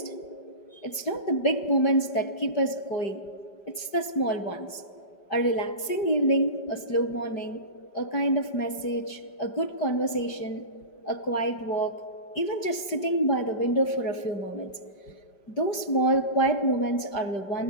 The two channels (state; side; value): late; right; 5.1 ms